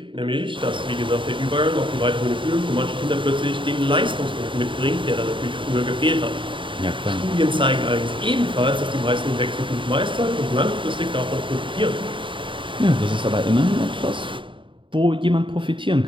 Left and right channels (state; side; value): late; left; 0.24 ms